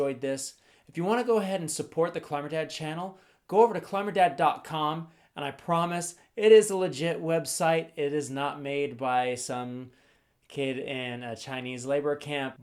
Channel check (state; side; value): identical; both; correlation 1.00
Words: this. If you want to go ahead and support the Climber Dad channel, go over to climberdad.com, and I promise it is a legit website. It is not made by some kid in a Chinese labor camp.